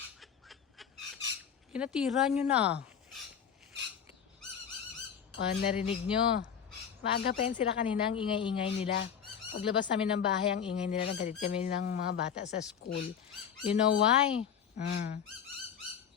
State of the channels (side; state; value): right; quieter; 7.9 dB